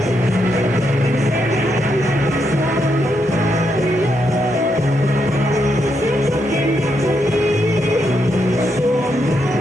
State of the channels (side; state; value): both; normal; correlation 0.80